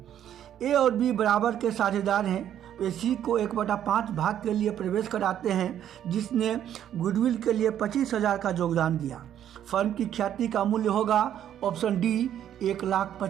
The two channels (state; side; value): quieter; left; 10.4 dB